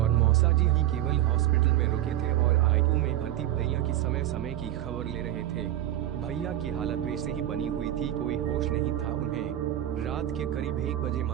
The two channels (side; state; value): left; quieter; 13.1 dB